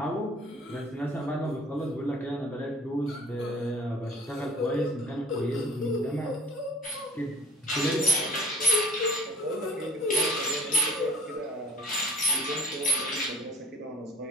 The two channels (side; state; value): both; normal; correlation 0.51